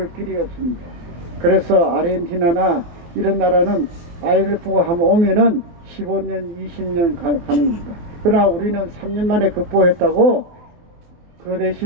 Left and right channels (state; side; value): late; left; 24 ms